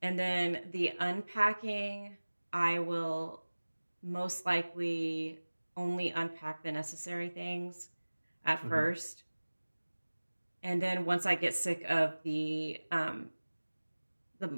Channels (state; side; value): inverted; both; correlation -1.00